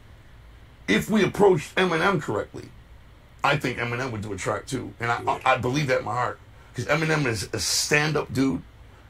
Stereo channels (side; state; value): both; identical; correlation 1.00